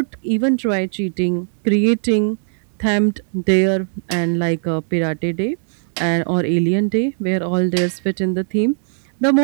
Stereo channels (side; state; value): left; silent; digital silence